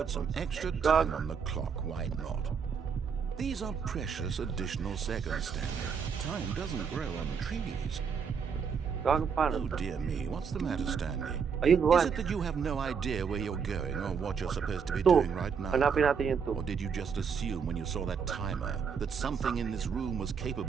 some extra time on the clock. Why not? These are precious additional seconds, Stanley. Time doesn't grow on trees. Gago Oh paano? dear me, what's the matter, Stanley? Ayun, Is 1. it that you have no idea where you're going or what you're supposed to be 2. doing right now? Hanapin natin yung 2. Or did you just assume when you saw that timer that something in this room was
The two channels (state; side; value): quieter; left; 6.4 dB